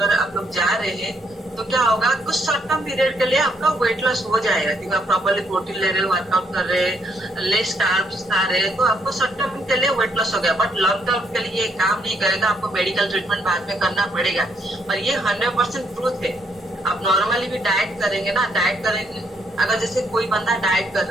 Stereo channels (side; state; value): both; normal; correlation 0.72